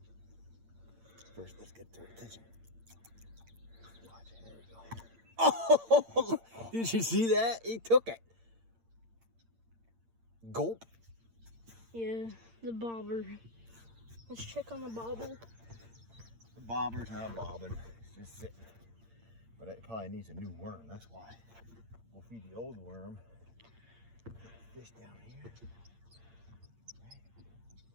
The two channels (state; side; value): late; left; 8.8 ms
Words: First, let's get their attention. Watch, there we go. Oh, did you see that? He took it. Gulp. Yeah, the bobber. Let's check on the bobber. The bobber's not bobbing. It's just sitting. But it probably needs a new worm. That's why. We'll feed the old worm. Fish down here.